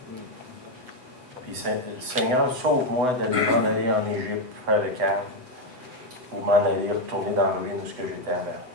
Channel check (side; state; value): left; late; 7.9 ms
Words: Puis Seigneur, sauve-moi d'aller m'en aller en Égypte, faire le câble, ou m'en aller retourner dans la ruine où j'étais avant.